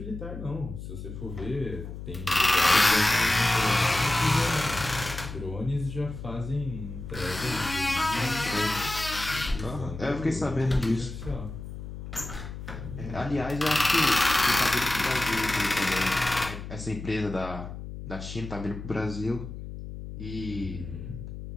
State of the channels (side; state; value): left; noise; hum, 9 dB below the sound